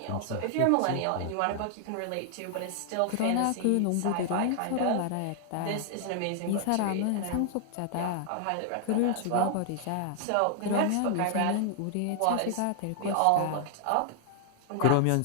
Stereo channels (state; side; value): different; both; correlation 0.00